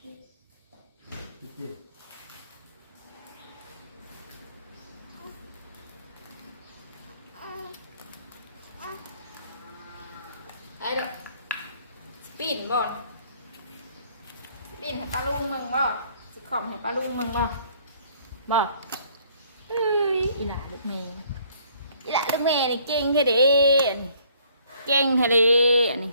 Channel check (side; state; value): both; inverted; correlation -0.61